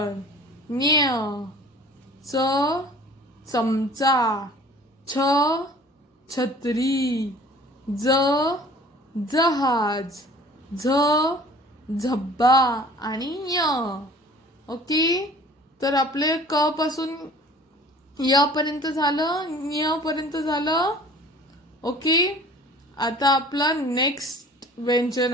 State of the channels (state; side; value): normal; both; correlation 0.48